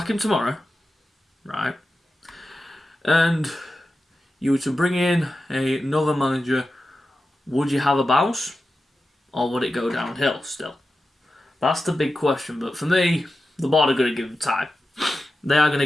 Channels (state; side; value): normal; both; correlation 0.92